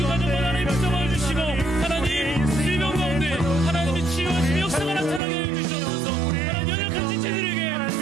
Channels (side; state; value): left; drops out; at 5.2 s